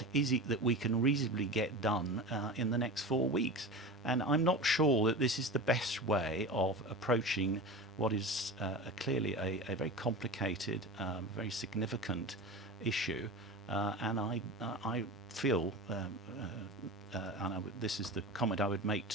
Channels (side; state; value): both; normal; correlation 0.30